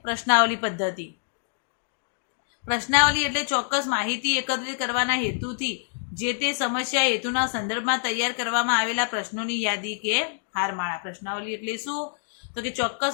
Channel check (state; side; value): silent; right; digital silence